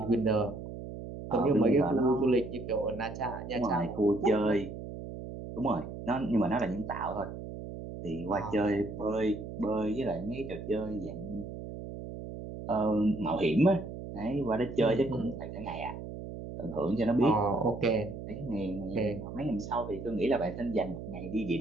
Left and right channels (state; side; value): noise; right; hum, 9 dB below the sound